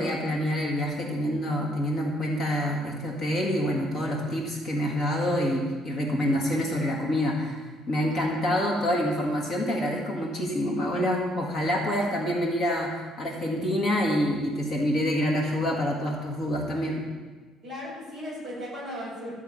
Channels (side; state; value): both; normal; correlation 0.69